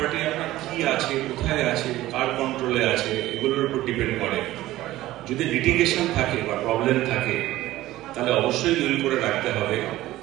আপনার কি আছে, কোথায় আছে, কার কন্ট্রোলে আছে, এগুলোর উপর ডিপেন্ড করে। যদি লিটিগেশন থাকে বা প্রবলেম থাকে তাহলে অবশ্যই উইল করে রাখতে হবে,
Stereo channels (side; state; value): left; quieter; 16.0 dB